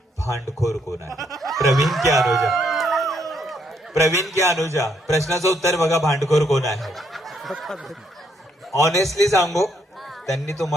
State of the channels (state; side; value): normal; both; correlation 0.73